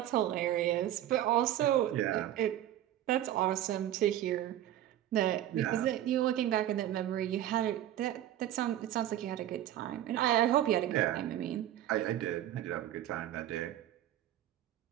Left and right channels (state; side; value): quieter; left; 12.5 dB